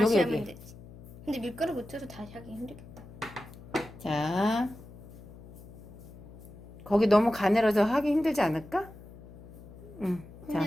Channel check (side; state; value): left; noise; hum, 17 dB below the sound